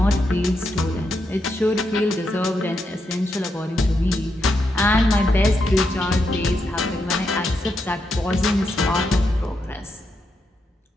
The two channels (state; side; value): normal; both; correlation 0.82